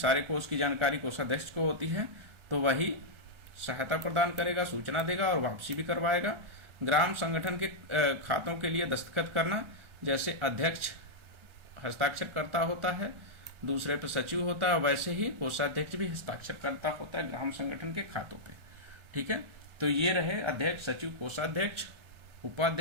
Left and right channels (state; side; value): late; left; 1.4 ms